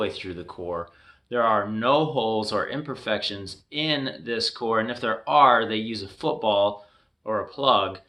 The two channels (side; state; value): both; identical; correlation 1.00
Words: through the core. There are no holes or imperfections in this core, and if there are, they use a football or a plug